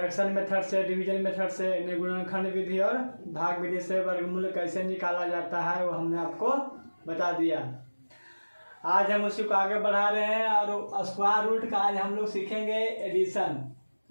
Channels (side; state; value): both; inverted; correlation -1.00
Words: मेथड से, डिवीजन मेथड से, गुणनखंड विधि और भाग विधि से वर्गमूल कैसे निकाला जाता है वो हमने आपको बता दिया। आज हम उसी को आगे बढ़ा रहे हैं और स्क्वायर रूट का आज हम लोग सीखेंगे एडिशन,